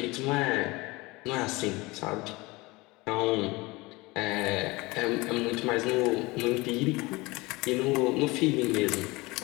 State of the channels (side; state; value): right; quieter; 23.0 dB